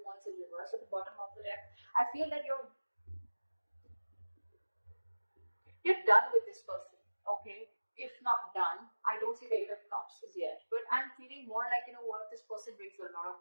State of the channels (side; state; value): both; inverted; correlation -1.00